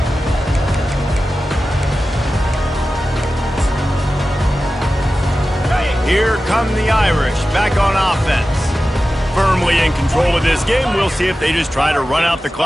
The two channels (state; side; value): normal; both; correlation 0.94